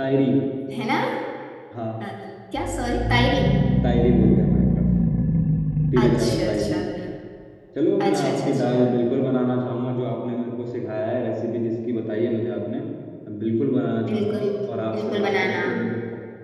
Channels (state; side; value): identical; both; correlation 1.00